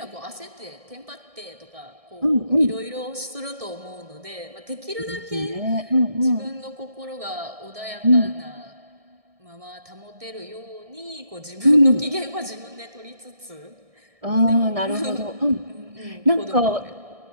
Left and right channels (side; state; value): left; late; 1.6 ms